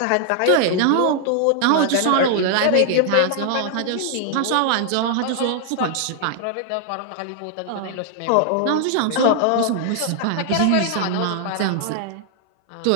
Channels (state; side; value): different; both; correlation 0.00